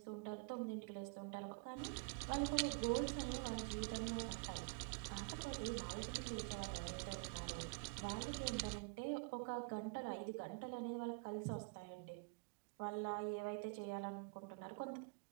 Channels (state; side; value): quieter; left; 36.2 dB